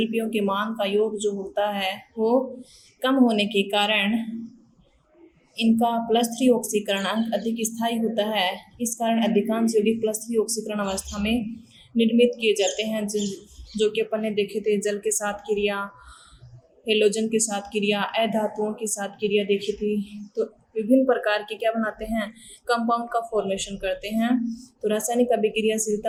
के मान का योग जो होता है वो कम होने के कारण इनका +3 ऑक्सीकरणांक अधिक स्थायी होता है। इस कारण अधिकांश यौगिक +3 ऑक्सीकरण अवस्था में निर्मित किए जाते हैं, जो कि अपन ने देखे थे। जल के साथ क्रिया, हेलोजन के साथ क्रिया, अधातुओं के साथ क्रिया देखी थी। तो विभिन्न प्रकार के क्या बनाते हैं, कंपाउंड का फॉर्मेशन करते हैं। तो रासायनिक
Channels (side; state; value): both; identical; correlation 1.00